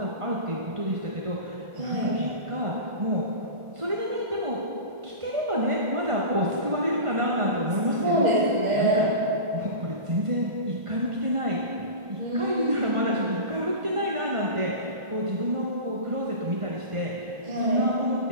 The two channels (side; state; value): left; late; 1.4 ms